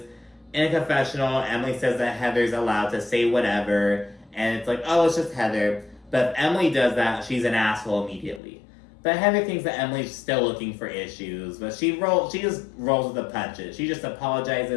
In a confessional, Emily says that Heather's allowed to say whatever, and it's like, oh, it's just Heather. But if Emily does that, she's an asshole immediately. But Heather thinks that Emily's still looking for issues, but she just rolls with the punches. She just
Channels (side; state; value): right; drops out; at 8.4 s